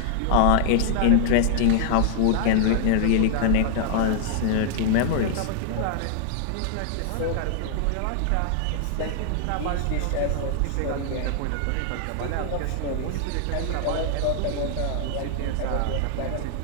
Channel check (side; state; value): both; different; correlation -0.01